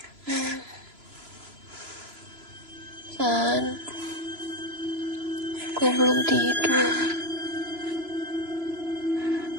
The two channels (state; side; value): late; left; 3.0 ms